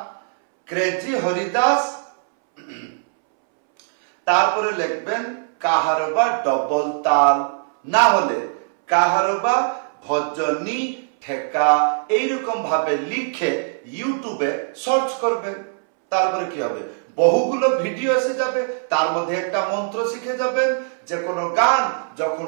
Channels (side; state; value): left; silent; 65 dB below the other